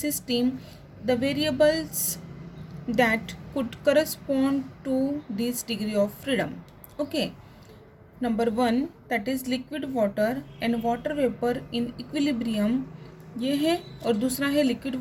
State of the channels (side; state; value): both; identical; correlation 1.00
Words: The variables that could correspond to this degree of freedom. Okay, number 1 that is liquid water and water vapor in equilibrium, ये है। और दूसरा है liquid